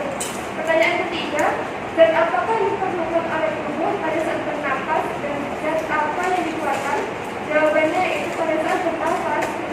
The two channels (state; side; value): identical; both; correlation 1.00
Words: Pertanyaan ketiga, zat apakah yang diperlukan oleh tubuh pada saat bernapas dan zat apa yang dikeluarkan? Jawabannya itu pada saat bernapas